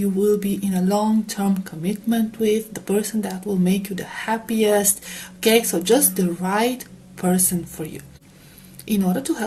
will be in a long-term commitment with, the person that will make you the happiest. Okay, so just the right person for you. In order to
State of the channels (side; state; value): both; identical; correlation 1.00